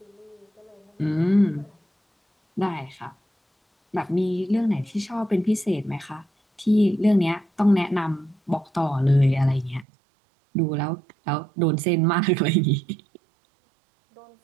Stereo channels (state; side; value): drops out; left; at 9.9 s